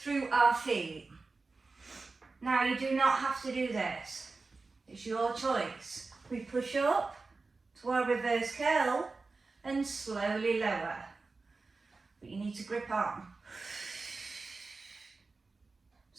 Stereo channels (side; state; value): left; quieter; 3.9 dB